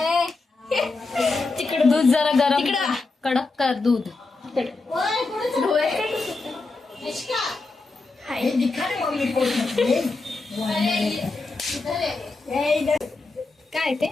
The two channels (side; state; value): right; quieter; 3.6 dB